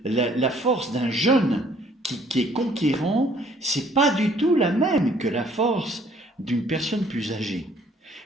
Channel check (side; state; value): both; normal; correlation 0.60